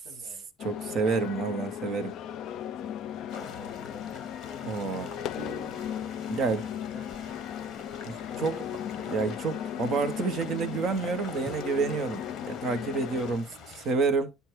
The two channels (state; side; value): normal; both; correlation 0.49